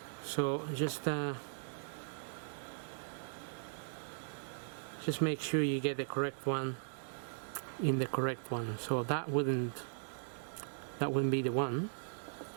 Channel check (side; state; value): left; silent; digital silence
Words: So just make sure you get the correct one in the correct one. So that wouldn't be the one,